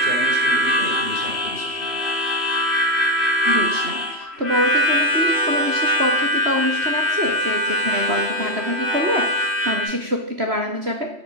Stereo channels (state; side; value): late; left; 3.1 ms